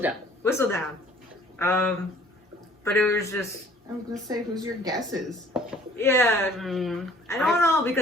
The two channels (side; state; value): both; normal; correlation 0.55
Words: Whistledown. But it was just, I was gonna say, who's your guesses? yeah. I don't know